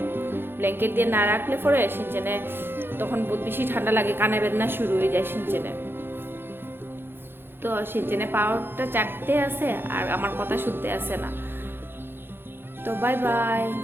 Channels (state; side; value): late; left; 0.10 ms